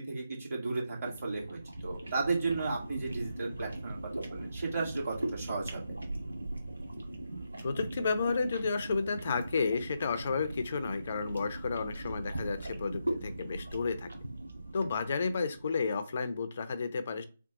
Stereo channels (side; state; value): both; inverted; correlation -0.83